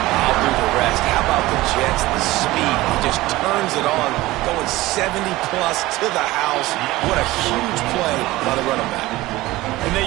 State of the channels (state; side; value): quieter; left; 18.3 dB